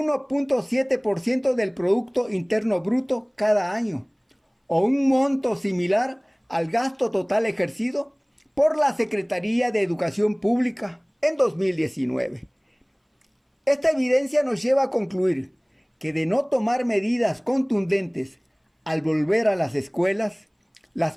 del Producto Interno Bruto cada año, o un monto similar al gasto total ejercido por la Secretaría de Educación Pública en 2019. Esta evidencia nos lleva a concluir que de no tomar medidas contundentes al volver a las escuelas,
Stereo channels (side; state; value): both; identical; correlation 1.00